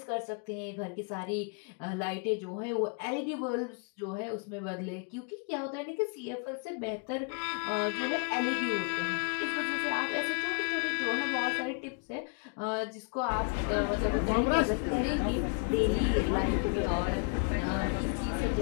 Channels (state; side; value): quieter; right; 37.4 dB